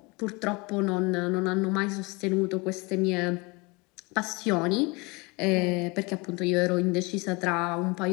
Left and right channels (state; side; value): quieter; right; 27.0 dB